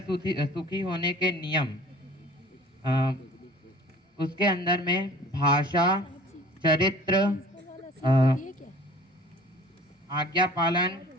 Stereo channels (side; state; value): both; normal; correlation 0.47